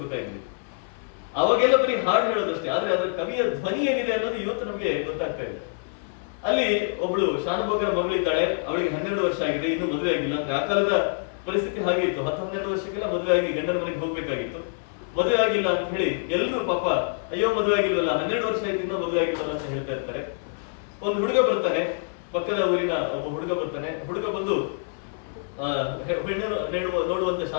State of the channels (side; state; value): right; silent; 57 dB below the other